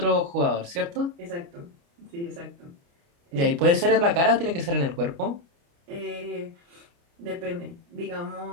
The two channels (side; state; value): left; late; 29 ms